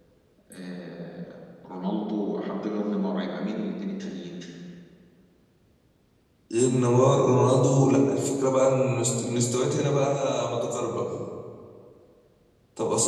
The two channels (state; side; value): identical; both; correlation 1.00